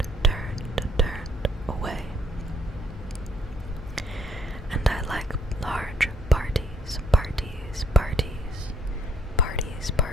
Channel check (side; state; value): both; normal; correlation 0.65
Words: away. And I like large parties, parties, parties, parties,